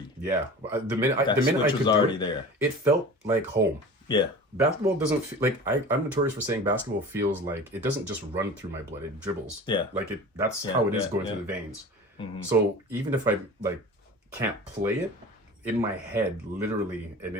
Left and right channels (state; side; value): normal; both; correlation 0.37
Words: Yeah, the minute I could was already there. It felt like home. Yeah, basketball doesn't feel like I'm notorious for saying basketball feels like it doesn't just run through my blood; it dribbles. Yeah, like it. That's how it is going through the veins. So even if I like can't play it, in my head, literally,